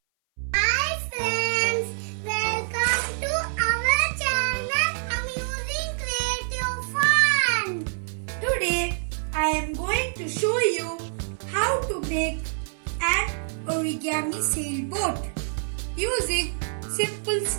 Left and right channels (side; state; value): left; silent; 58 dB below the other